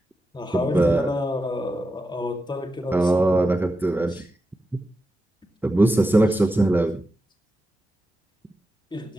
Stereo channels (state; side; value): normal; both; correlation 0.90